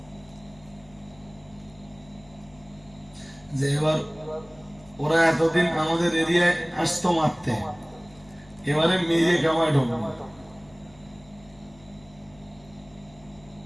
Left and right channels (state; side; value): noise; left; hum, 25 dB below the sound